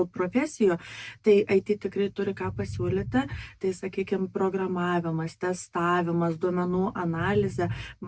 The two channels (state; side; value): identical; both; correlation 1.00